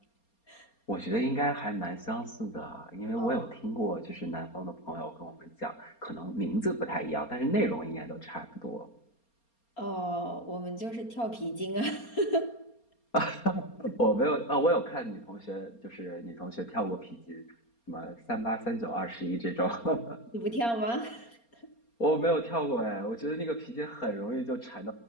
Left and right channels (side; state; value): right; late; 4.3 ms